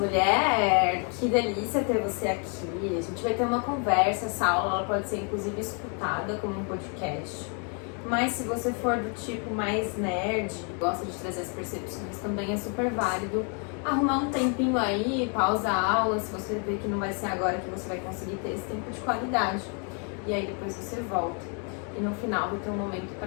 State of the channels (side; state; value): right; quieter; 38.7 dB